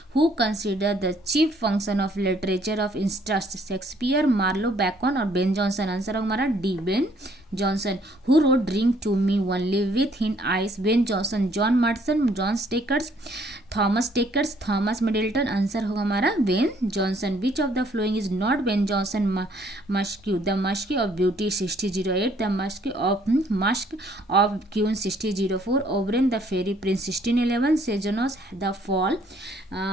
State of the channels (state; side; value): normal; both; correlation 0.64